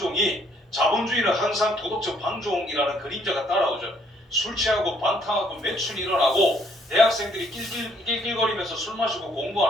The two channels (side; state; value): both; normal; correlation 0.66